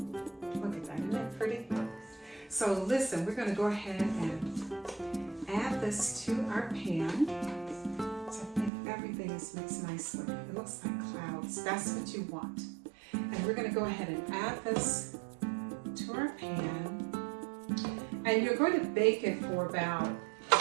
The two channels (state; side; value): drops out; left; at 8.7 s